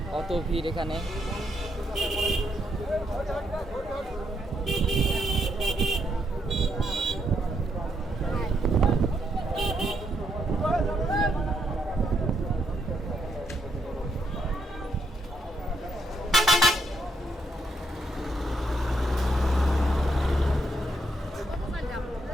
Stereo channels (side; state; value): both; normal; correlation 0.77